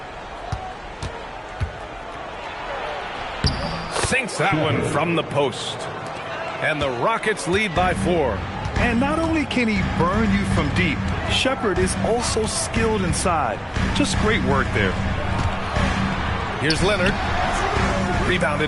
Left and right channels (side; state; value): both; identical; correlation 1.00